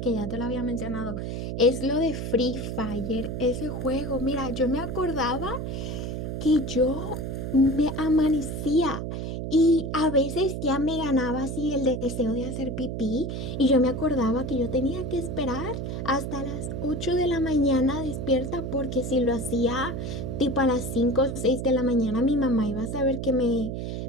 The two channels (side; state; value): right; noise; hum, 4 dB below the sound